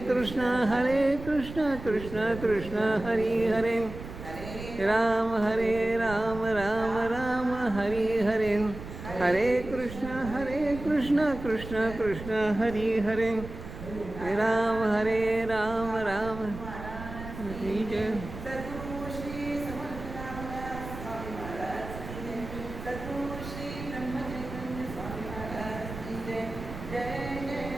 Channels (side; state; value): right; noise; rumble, 11 dB below the sound